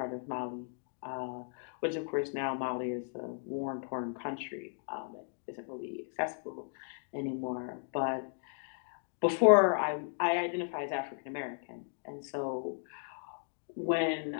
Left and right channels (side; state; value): right; silent; digital silence